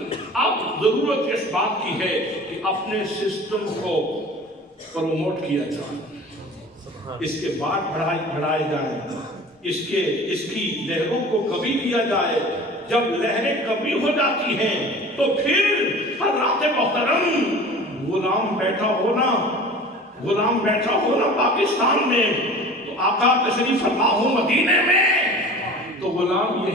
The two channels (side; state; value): both; normal; correlation 0.41